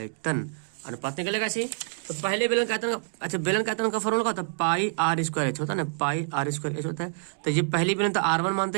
अनुपात निकलेगा ऐसे। तो पहले बेलन का आयतन, अच्छा बेलन का आयतन का फॉर्मूला क्या होता है, पाई आर स्क्वायर एच होता है ना, पाई आर स्क्वायर एच होता है। तो ये पहली बेलन तो R1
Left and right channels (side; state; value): left; silent; digital silence